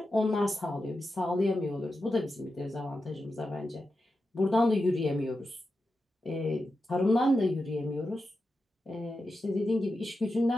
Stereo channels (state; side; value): normal; both; correlation 0.90